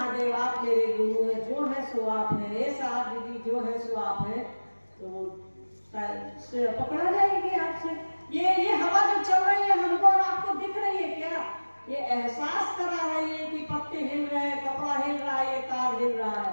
आप मेरे गुरु है, जो है सो आप है, हे साहब दीदी जो है सो आप है, तो पकड़ा जाएगी आपसे। ये हवा जो चल रही है हमको और आपको दिख रही है क्या? ये एहसास करा रही है कि पत्ते हिल रहे हैं, कपड़ा हिल रहा है, ये तार हिल रहा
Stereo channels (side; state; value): both; inverted; correlation -1.00